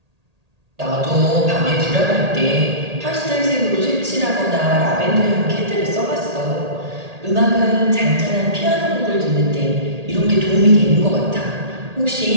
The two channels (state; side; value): late; left; 1.8 ms